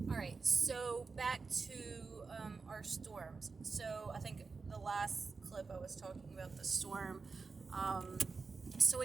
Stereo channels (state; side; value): quieter; left; 4.5 dB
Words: All right, so back to our storms. So I think the last clip I was talking about the storm. So,